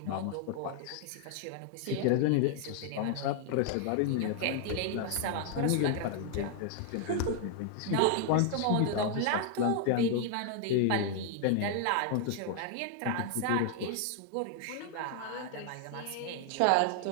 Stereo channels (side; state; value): both; different; correlation 0.00